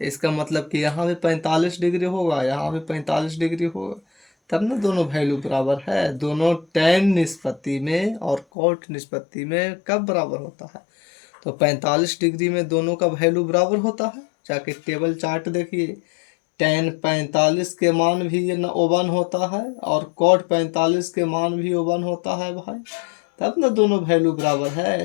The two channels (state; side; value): drops out; right; at 8.5 s